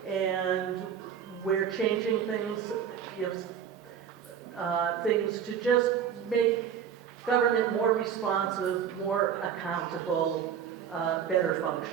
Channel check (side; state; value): left; quieter; 8.3 dB